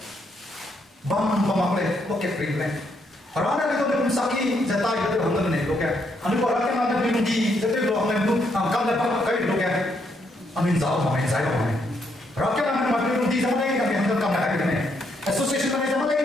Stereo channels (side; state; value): both; normal; correlation 0.75